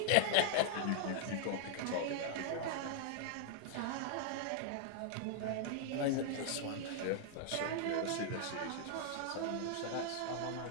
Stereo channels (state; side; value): different; both; correlation -0.01